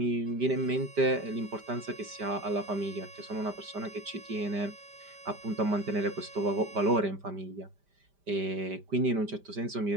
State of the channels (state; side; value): late; left; 5.1 ms